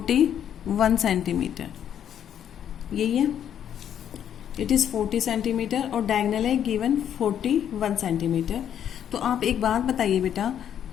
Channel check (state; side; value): quieter; right; 9.5 dB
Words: सेंटीमीटर, यही है, इट इज़ 40 सेंटीमीटर और डायगोनल है गिवन 41 सेंटीमीटर। तो आप एक बात बताइए बेटा,